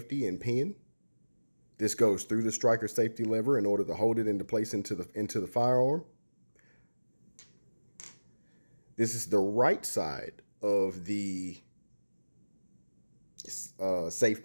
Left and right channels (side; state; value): both; inverted; correlation -1.00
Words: and pin. This goes through the striker safety lever in order to hold it into place into the firearm. This is the right side of the